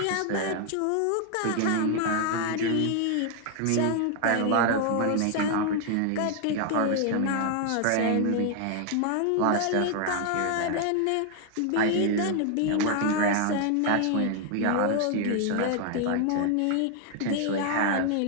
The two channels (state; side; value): different; both; correlation 0.00